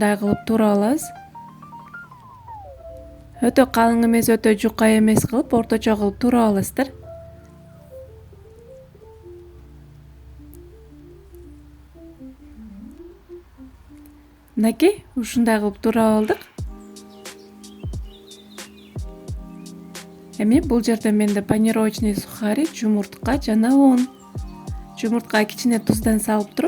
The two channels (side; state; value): both; identical; correlation 1.00